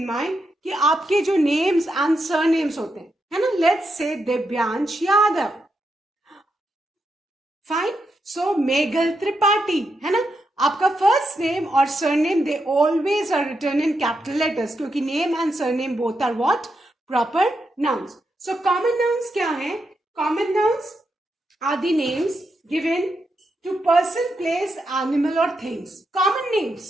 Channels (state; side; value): normal; both; correlation 0.83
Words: mind कि आपके जो names and surnames होते हैं, है ना, let's say Divyansh Yadav. Fine. So Meghal Tripathi, है ना, आपका फर्स्ट नेम और surname they always are written in capital letters, क्योंकि name and surname both are what? Proper nouns. So common nouns क्या है? Common nouns are the names given to person, place, animal और things. Common